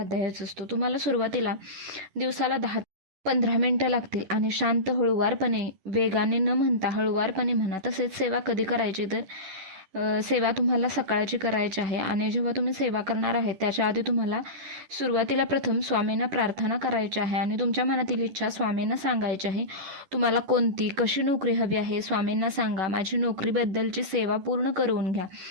असतो. तुम्हाला सुरुवातीला दिवसाला 10-15 मिनटं लागतील आणि शांत हळूवारपणे, वेगाने न म्हणता हळूवारपणे म्हणा. तसेच सेवा कधी करायची, तर सेवा तुम्हाला सकाळची करायची आहे आणि जेव्हा तुम्ही सेवा करणार आहे त्याच्या आधी तुम्हाला सुरुवातीला प्रथम स्वामींना प्रार्थना करायची आहे आणि तुमच्या मनातील इच्छा स्वामींना सांगायची आहे. तुम्हाला कोणती कशी नोकरी हवी आहे स्वामींना सांगा. माझी नोकरीबद्दलची सेवा पूर्ण करून घ्या,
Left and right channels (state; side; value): late; left; 10 ms